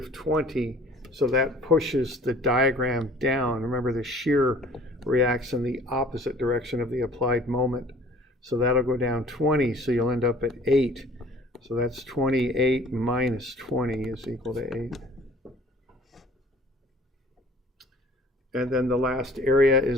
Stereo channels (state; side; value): normal; both; correlation 0.50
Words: so that pushes the diagram down. Remember, the shear reacts in the opposite direction of the applied moment. So that'll go down 20, so you'll end up at 8. So that's 28 minus 20 is equal to 8. And then the last area